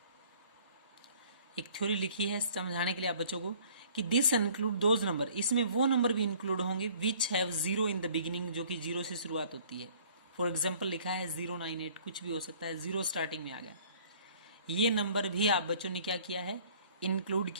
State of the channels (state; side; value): inverted; both; correlation -0.54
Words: एक थ्योरी लिखी है समझाने के लिए आप बच्चों को कि दिस इंक्लूड दोज नंबर, इसमें वो नंबर भी इंक्लूड होंगे which have 0 in the beginning, जो कि 0 से शुरुआत होती है। फॉर एग्जाम्पल लिखा है 098, कुछ भी हो सकता है, 0 स्टार्टिंग में आ गया, ये नंबर भी आप बच्चों ने क्या किया है, इंक्लूड